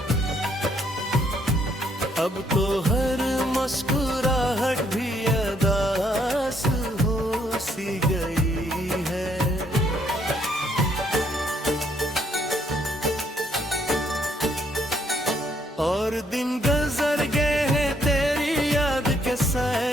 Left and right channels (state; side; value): normal; both; correlation 0.70